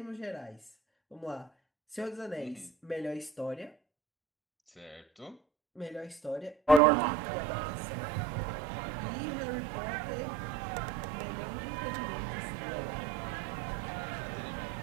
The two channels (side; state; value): left; drops out; at 6.8 s